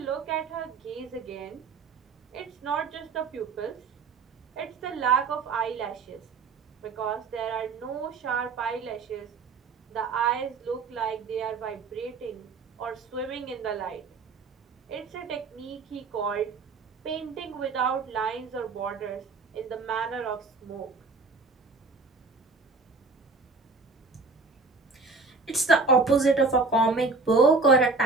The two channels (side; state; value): left; quieter; 4.1 dB